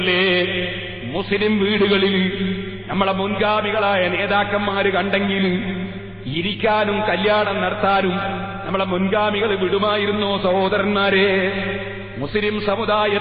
മുസ്ലിം വീടുകളിൽ. നമ്മളെ മുൻഗാമികളായ നേതാക്കന്മാര് കണ്ടെങ്കിൽ ഇരിക്കാനും കല്യാണം നടത്താനും നമ്മളെ മുൻഗാമികൾ വിടുമായിരുന്നോ സഹോദരന്മാരെ? മുസ്ലിം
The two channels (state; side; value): identical; both; correlation 1.00